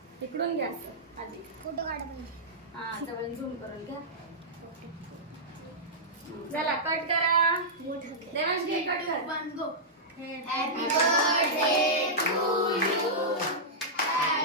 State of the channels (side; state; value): both; normal; correlation -0.12